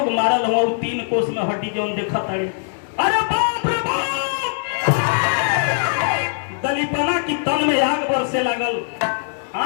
मारल हुआ 3 कोस में हड्डी जौन देखा तारे। अरे बाप रे बाप, दलीपना की तन में आग बरसे लगल,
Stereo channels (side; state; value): right; silent; digital silence